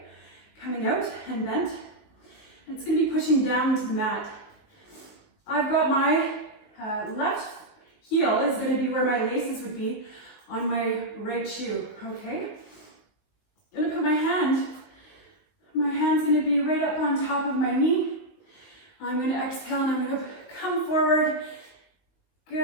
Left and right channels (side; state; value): right; late; 19 ms